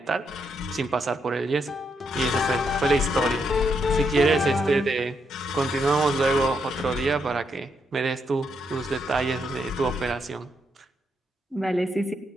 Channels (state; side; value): normal; both; correlation 0.79